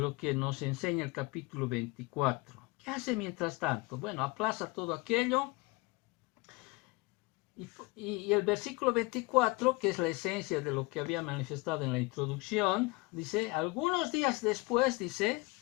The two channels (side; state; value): right; quieter; 24.3 dB